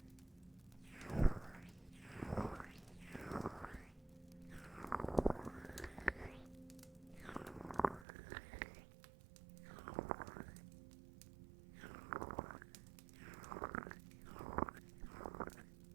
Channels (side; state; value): left; drops out; at 8.1 s